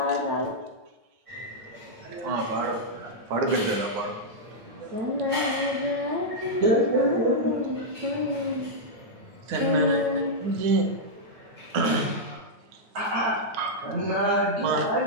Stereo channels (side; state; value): left; late; 9.2 ms